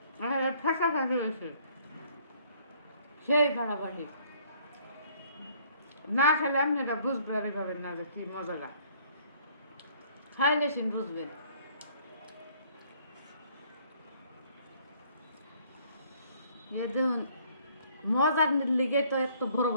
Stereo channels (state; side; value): inverted; both; correlation -0.61